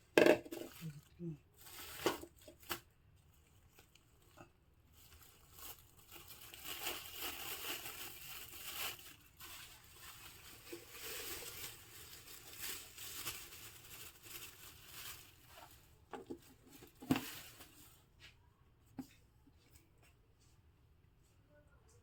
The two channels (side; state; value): both; identical; correlation 1.00